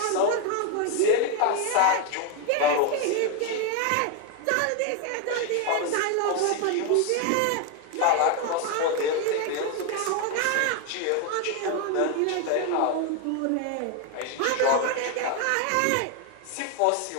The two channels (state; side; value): different; both; correlation 0.01